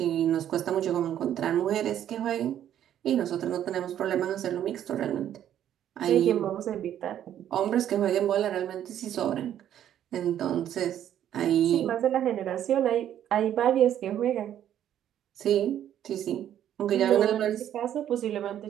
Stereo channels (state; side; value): quieter; left; 10.7 dB